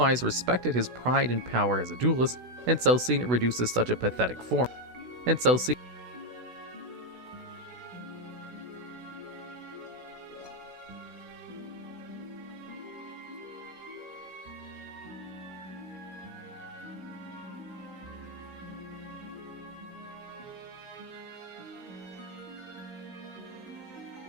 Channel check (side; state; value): left; late; 16 ms